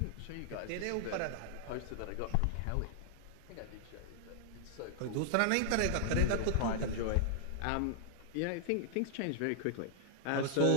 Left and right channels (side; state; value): both; different; correlation -0.01